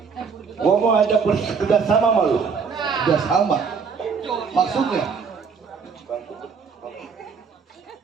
Gua mau ajak kerja sama sama lu. Udah sama. Maksudnya?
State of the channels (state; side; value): quieter; left; 5.7 dB